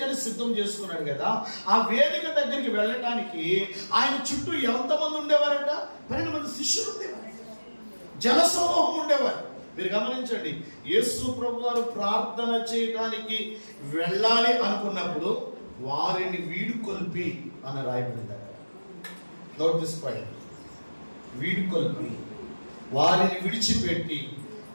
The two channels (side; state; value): both; inverted; correlation -1.00